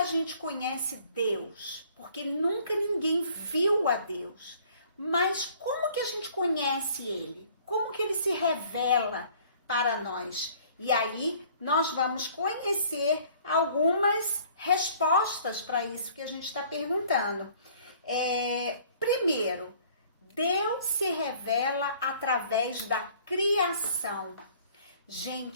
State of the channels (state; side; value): inverted; both; correlation -0.55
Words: gente conhece Deus? Porque nunca ninguém viu a Deus. Mas como que a gente conhece Ele? Como que Ele se revela para nós? E aí nós vamos conhecer algumas respostas para isso que a gente está perguntando. Primeiro, Deus se revela através da criação.